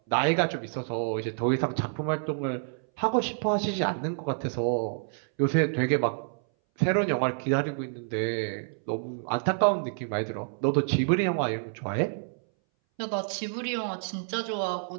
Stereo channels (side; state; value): left; silent; 59 dB below the other